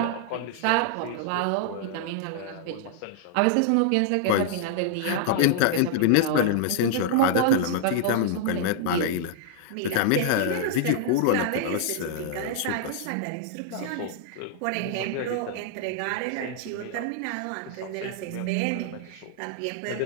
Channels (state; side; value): different; both; correlation -0.01